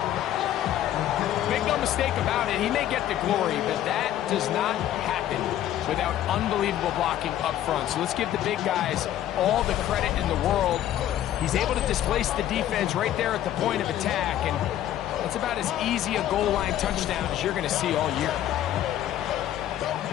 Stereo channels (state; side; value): quieter; right; 12.1 dB